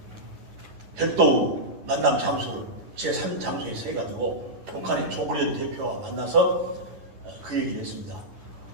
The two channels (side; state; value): left; late; 10 ms